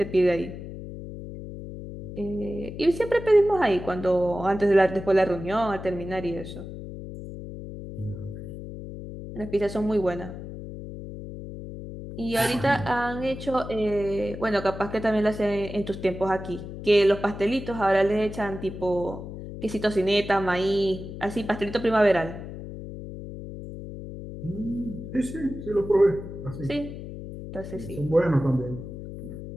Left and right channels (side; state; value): left; noise; hum, 10 dB below the sound